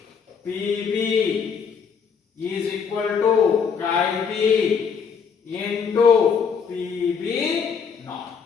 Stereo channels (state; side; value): quieter; right; 6.3 dB